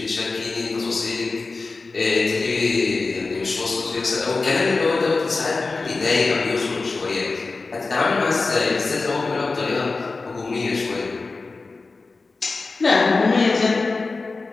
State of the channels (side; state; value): right; quieter; 3.9 dB